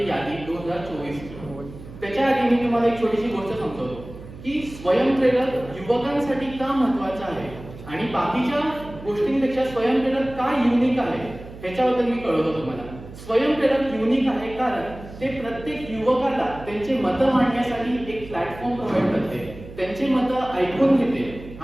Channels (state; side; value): noise; right; hum, 15 dB below the sound